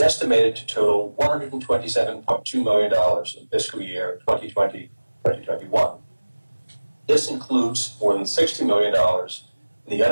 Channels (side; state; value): both; inverted; correlation -1.00